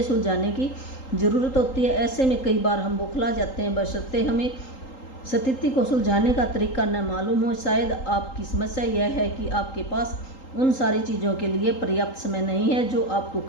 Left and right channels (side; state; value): right; late; 3.8 ms